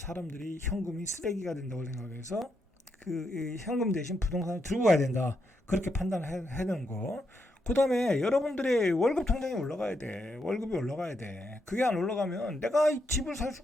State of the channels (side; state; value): both; normal; correlation 0.81